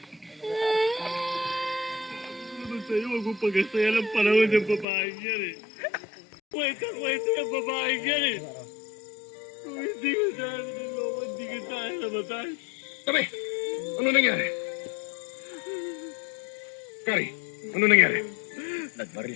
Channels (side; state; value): right; drops out; at 4.9 s